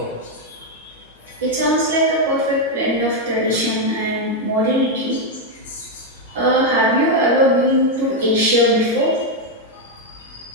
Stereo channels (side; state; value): both; normal; correlation 0.02